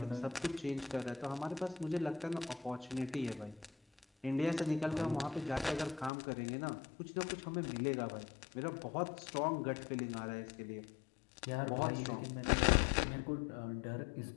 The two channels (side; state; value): right; drops out; at 6.1 s